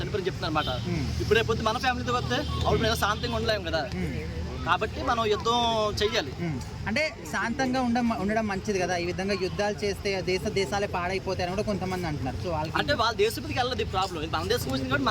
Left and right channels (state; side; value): identical; both; correlation 1.00